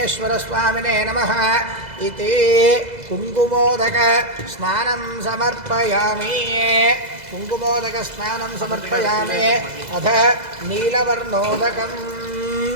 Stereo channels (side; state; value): left; late; 2.0 ms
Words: नमः इति कुङ्कुमोदक स्नानं समर्पयामि कुङ्कुमोदक स्नानं समर्पयामि अथ नीलवर्णोदकम्